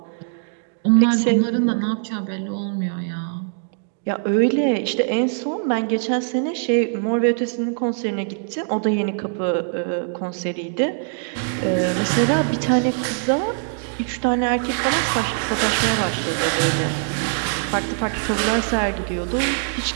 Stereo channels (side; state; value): left; silent; digital silence